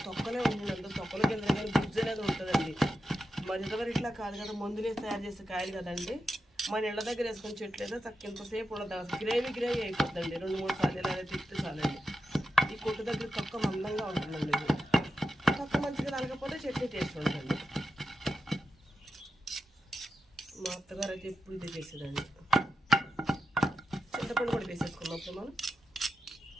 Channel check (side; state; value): both; normal; correlation 0.89